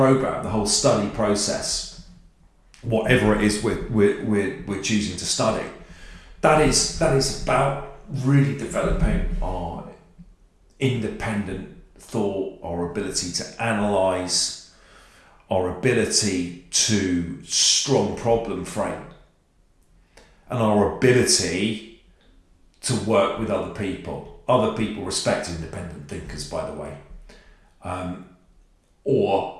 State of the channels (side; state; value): both; identical; correlation 1.00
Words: the whole study process, whatever it is we're choosing to study. That is about really developing our independent thought, our ability to analyse, our ability to strong problem frame, and our ability to work with other people. Other people respect independent thinkers, by the way.